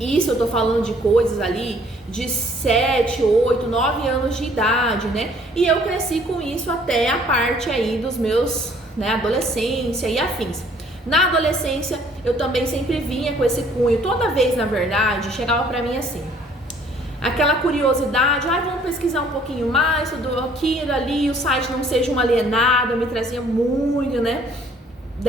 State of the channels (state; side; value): normal; both; correlation 0.59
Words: eu tô falando de coisas ali de 7, 8, 9 anos de idade, E eu cresci com isso até a parte aí dos meus, adolescência e afins. Na adolescência, eu também sempre vinha com esse cunho. Toda vez, na verdade, chegava pra mim assim, aquela curiosidade, vamos pesquisar um pouquinho mais, tudo aquilo ali, o site não seja um alienado, me trazia muito,